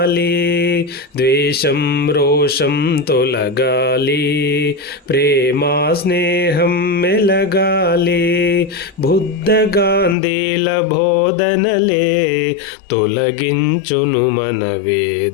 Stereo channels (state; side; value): drops out; right; at 10.2 s